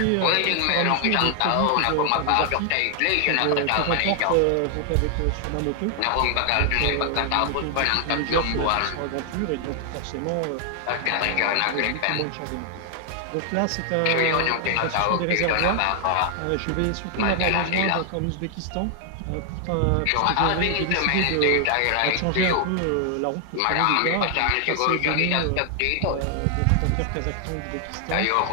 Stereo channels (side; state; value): both; different; correlation 0.00